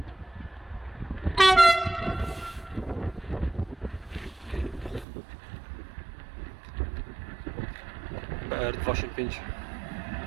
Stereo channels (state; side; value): drops out; left; at 5.1 s